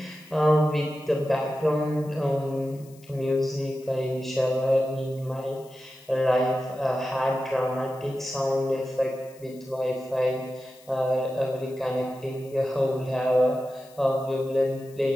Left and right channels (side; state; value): left; noise; hiss, 26 dB below the sound